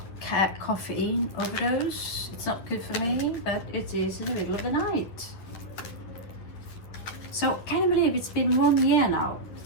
caffeine overdose. It's not good for me, but it is in the middle of the night. So can you believe it's been 1 year now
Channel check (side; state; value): right; late; 10 ms